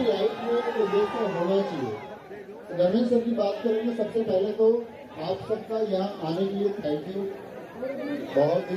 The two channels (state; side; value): identical; both; correlation 1.00